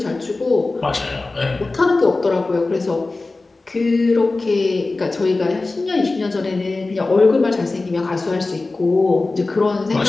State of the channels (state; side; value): quieter; right; 3.4 dB